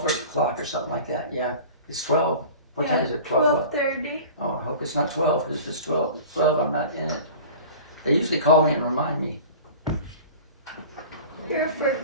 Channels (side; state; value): both; inverted; correlation -0.40